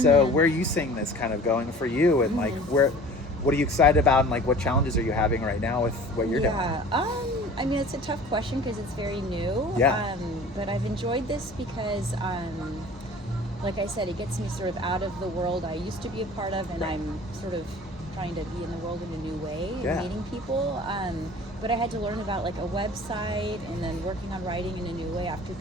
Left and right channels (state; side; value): normal; both; correlation 0.44